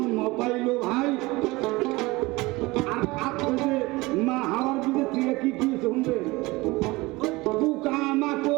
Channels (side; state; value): left; quieter; 21.9 dB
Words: পাইলো ভাই। আর আপনি যে মা হাওয়ার বীজের থেকে কি কি শুনবে, পোকা